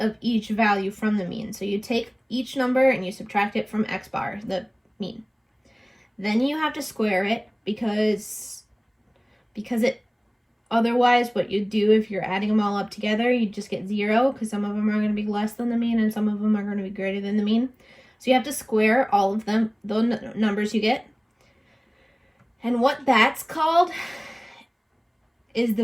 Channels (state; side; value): identical; both; correlation 1.00